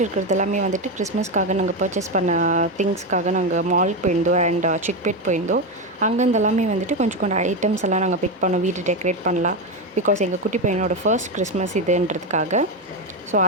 இருக்கிறது எல்லாமே வந்துட்டு கிறிஸ்மஸ்க்காக நாங்கள் பர்ச்சேஸ் பண்ண திங்ஸ்க்காக நாங்கள் மாலுக்கு போயிருந்தோம் அண்ட் சிக்பேட் போயிருந்தோம். அங்கேருந்து எல்லாமே வந்துட்டு கொஞ்சம் ஐட்டம்ஸ் எல்லாம் நாங்கள் பிக் பண்ணோம், வீடு டெக்கரேட் பண்ணலாம். பிகாஸ் எங்கள் குட்டி பையனோட ஃபர்ஸ்ட் கிறிஸ்மஸ் இதுன்றதுக்காக. ஸோ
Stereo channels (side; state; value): both; normal; correlation 0.12